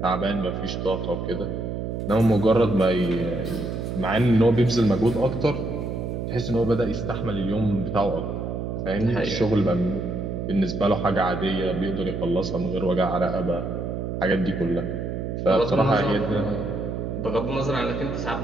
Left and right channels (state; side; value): noise; right; hum, 4 dB below the sound